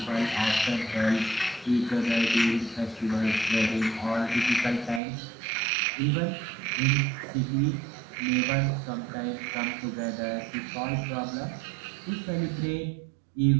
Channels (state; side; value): drops out; left; at 5.0 s